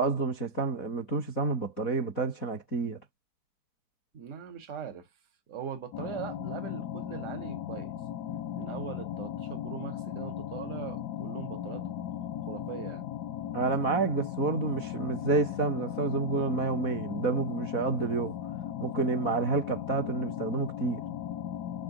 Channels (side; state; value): right; late; 4.1 ms